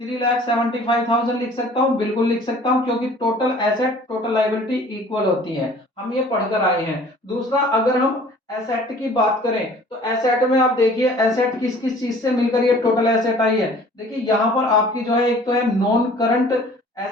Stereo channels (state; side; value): normal; both; correlation 0.50